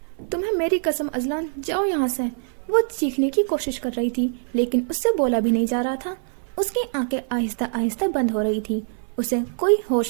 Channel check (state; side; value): silent; left; 57 dB below the other